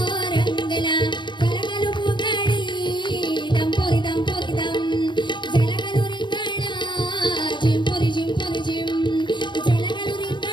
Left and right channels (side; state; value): right; late; 0.22 ms